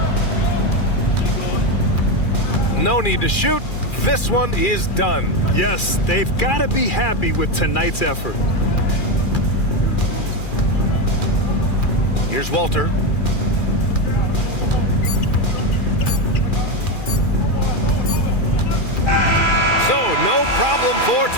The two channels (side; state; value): right; late; 2.4 ms